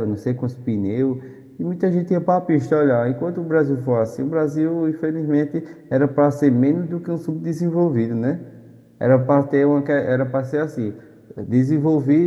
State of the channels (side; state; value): both; identical; correlation 1.00